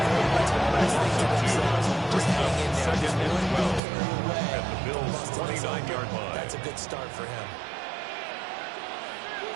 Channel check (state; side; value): drops out; left; at 3.8 s